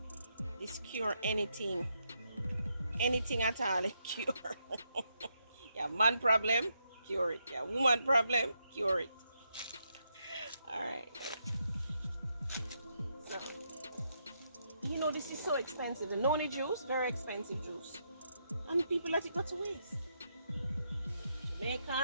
This cure anything at all, it cure. Yeah, man problem, cure it. Yeah, woman problem, cure it. All right. So, you know, this is so expensive. The noni juice, very expensive juice, and people let it go to waste.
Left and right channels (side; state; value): both; inverted; correlation -0.80